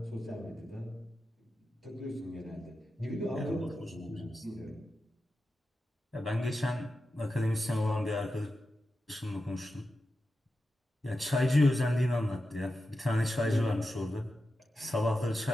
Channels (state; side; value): normal; both; correlation 0.91